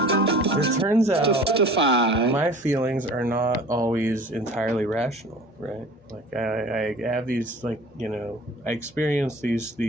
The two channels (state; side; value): normal; both; correlation 0.44